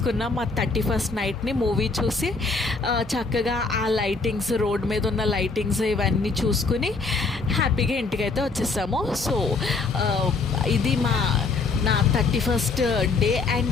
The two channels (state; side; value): quieter; right; 4.2 dB